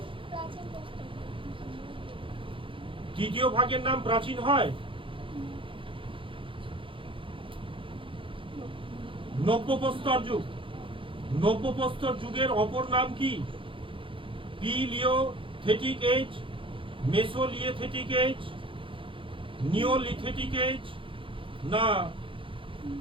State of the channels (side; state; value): left; late; 0.25 ms